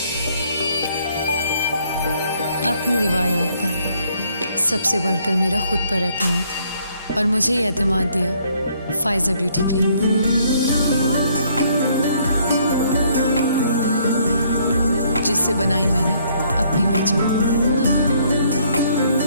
اپنی روایات پر, سب سے بڑھ کر میرا خود پر اعتماد. اور مجھے یہ اعتماد دیا فائزہ بیوٹی کریم نے, جس سے بنائی میں نے اپنی پہچان.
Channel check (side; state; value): both; inverted; correlation -0.66